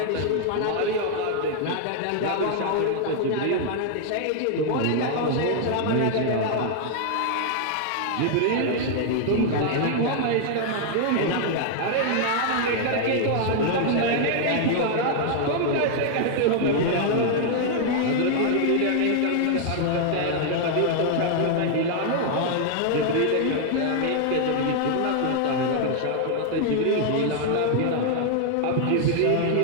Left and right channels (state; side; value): different; both; correlation 0.00